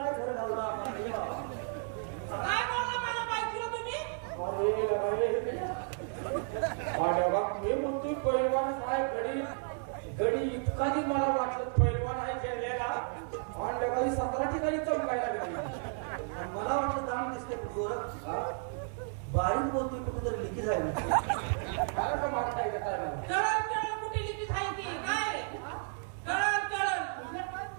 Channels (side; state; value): left; silent; 56 dB below the other